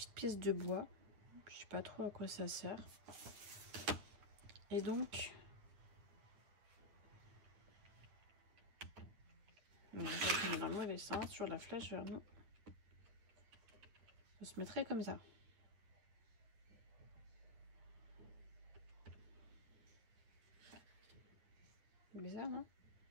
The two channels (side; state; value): left; late; 9.5 ms